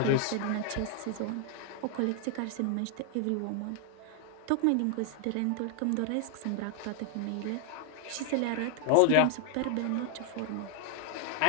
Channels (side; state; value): both; different; correlation 0.00